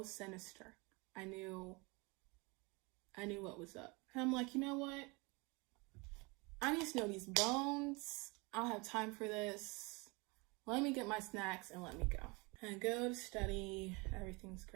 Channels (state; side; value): quieter; left; 27.5 dB